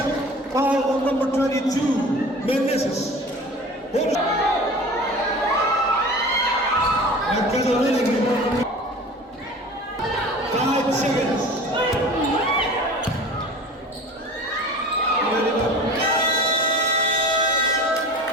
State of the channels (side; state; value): both; normal; correlation 0.39